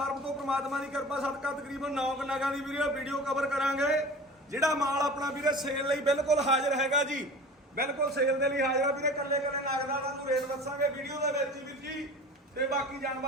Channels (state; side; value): normal; both; correlation 0.38